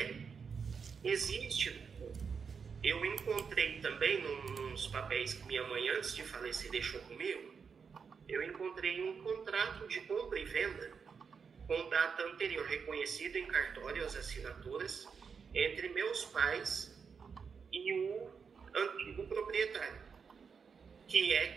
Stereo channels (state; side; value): quieter; left; 6.0 dB